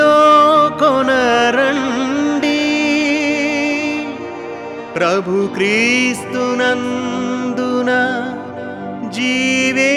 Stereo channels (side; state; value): both; identical; correlation 1.00